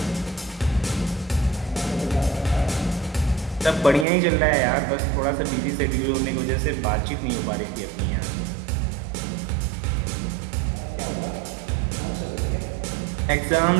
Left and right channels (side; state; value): left; drops out; at 4.0 s